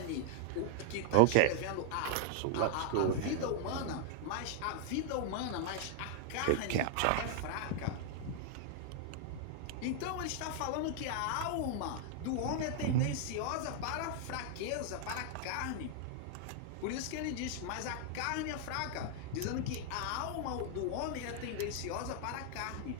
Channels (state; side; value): different; both; correlation 0.00